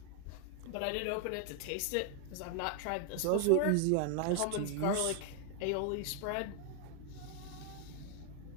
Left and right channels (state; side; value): different; both; correlation 0.00